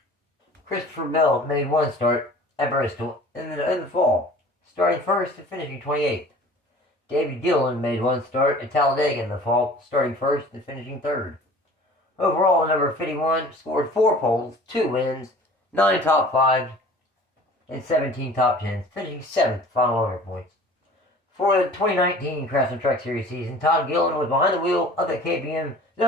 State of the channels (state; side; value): normal; both; correlation 0.46